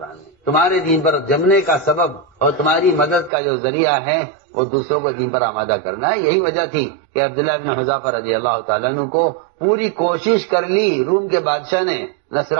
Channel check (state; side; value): drops out; left; at 3.3 s